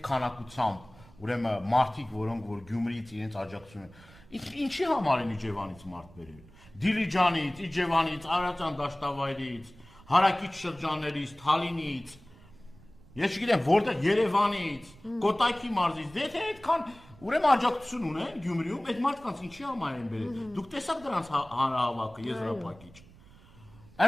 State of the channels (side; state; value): right; noise; rumble, 23 dB below the sound